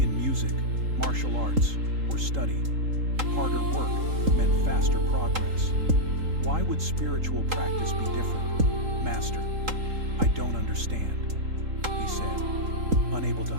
In music, martial arts, or study, harder work meant faster progress. Why would spiritual practice be different? "Master, I don't understand," he said, unable to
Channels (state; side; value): late; left; 3.8 ms